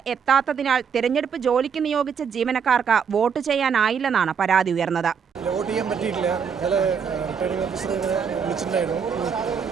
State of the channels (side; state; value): left; quieter; 6.7 dB